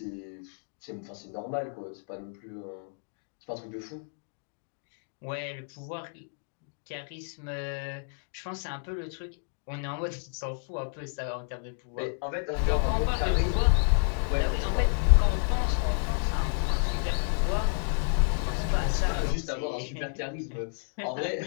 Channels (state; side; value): silent; right; 58 dB below the other